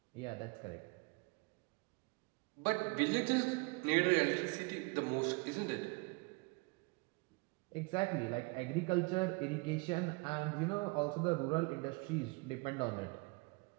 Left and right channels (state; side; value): quieter; left; 28.3 dB